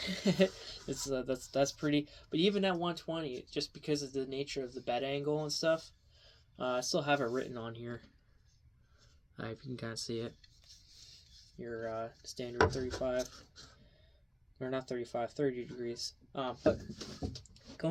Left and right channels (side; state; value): both; identical; correlation 1.00